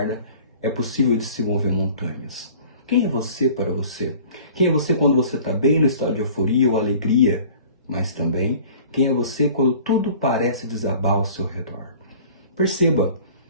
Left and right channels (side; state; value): both; inverted; correlation -0.47